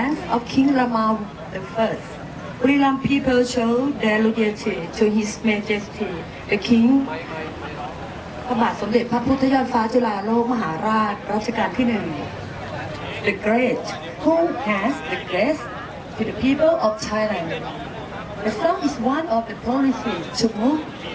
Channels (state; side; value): identical; both; correlation 1.00